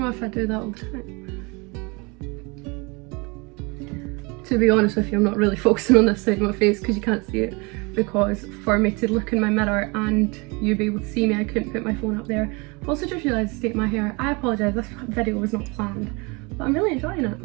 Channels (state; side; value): quieter; left; 28.3 dB